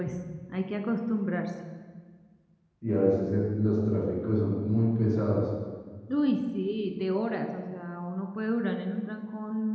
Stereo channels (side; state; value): both; identical; correlation 1.00